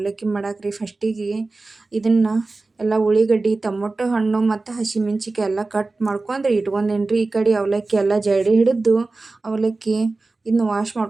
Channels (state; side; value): quieter; left; 3.4 dB